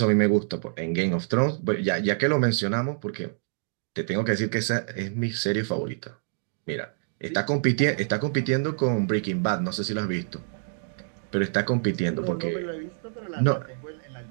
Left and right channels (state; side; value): silent; left; digital silence